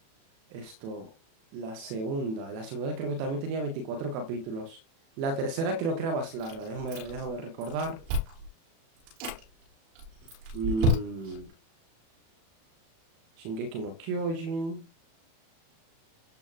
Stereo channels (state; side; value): late; left; 36 ms